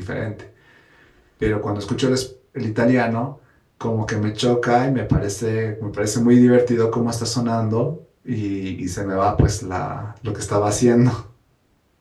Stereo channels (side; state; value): both; identical; correlation 1.00